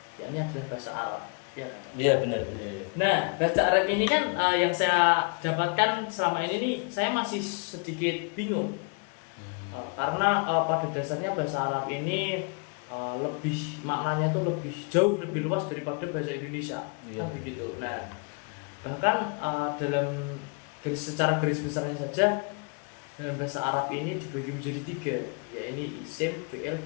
yakni adalah bahasa Arab, ya kan? Iya benar. Nah, bahasa Arab ini kan yang saya dapatkan selama ini nih, saya masih sedikit bingung karena pada dasarnya bahasa Arab ini lebih maknanya tuh lebih jauh lebih luas daripada bahasa Indonesia, kan begitu. Nah, bahkan dalam secara garis besarnya saja dengan bahasa Arab ini dibagi menjadi 3, yaitu isim, fi'il,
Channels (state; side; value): quieter; right; 34.7 dB